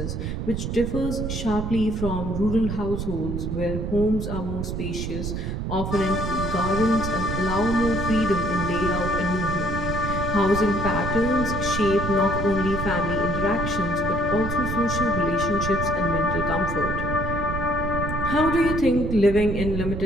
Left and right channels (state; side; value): noise; right; rumble, 3 dB below the sound